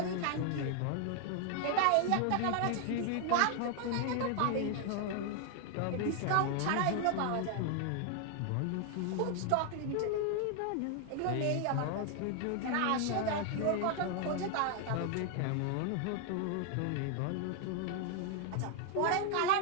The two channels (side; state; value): both; different; correlation 0.00